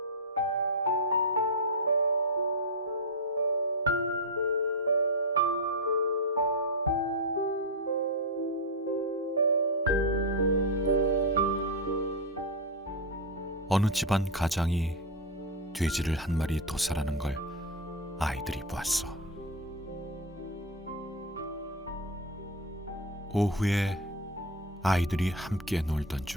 어느 집안 가장이 돼지를 한 마리 도살하는 걸 아이들이 보았어. 오후에 아이들이 함께 놀던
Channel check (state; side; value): normal; both; correlation 0.08